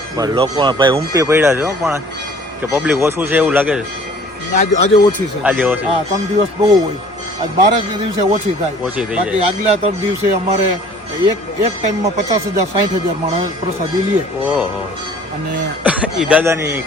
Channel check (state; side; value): normal; both; correlation 0.52